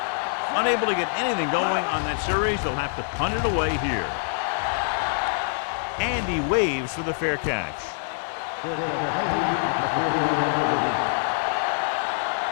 Unable to get anything going on that series, they'll have to punt it away here. And he waves for the fair catch. Fair catch made at the 41-yard line.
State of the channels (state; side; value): silent; right; digital silence